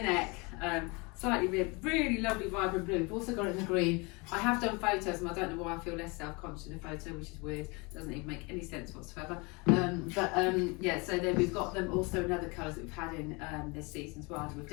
neck, slightly ribbed, really lovely vibrant blue. We've also got it in the green. I have done photos and I don't know why I feel less self-conscious in a photo, which is weird. Doesn't even make any sense whatsoever. Yeah, so then we've got them also in other colours that we've had in this season as well. We've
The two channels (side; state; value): right; quieter; 28.2 dB